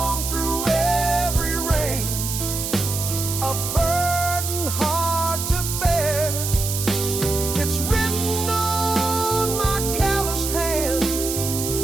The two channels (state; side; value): noise; right; hiss, 4 dB below the sound